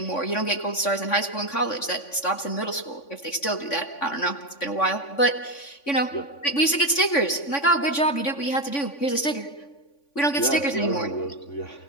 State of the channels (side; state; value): right; late; 3.5 ms